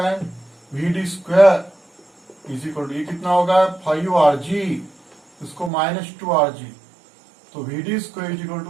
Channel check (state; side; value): drops out; left; at 5.7 s